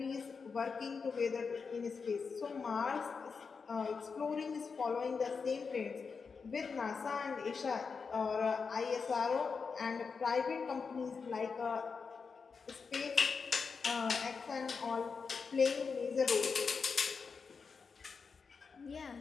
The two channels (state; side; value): quieter; right; 5.3 dB